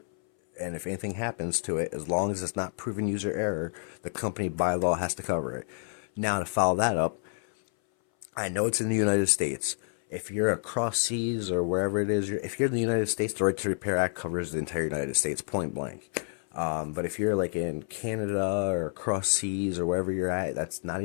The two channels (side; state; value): right; silent; 59 dB below the other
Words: And if anything happens to it, as long as it's not proven user error, the company by law has to cover it. Now, to follow that up, I know it's in the United States. If you're across seas or wherever it is, if you're in the United States, the Right to Repair Act covers the entire United States, point blank. But if you're like in Canada or across seas or wherever you're at, that's not